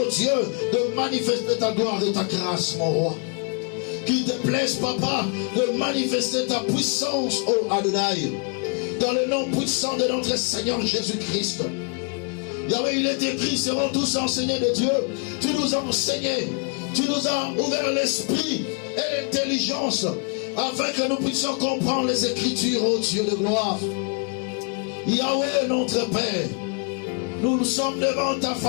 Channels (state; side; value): quieter; right; 37.6 dB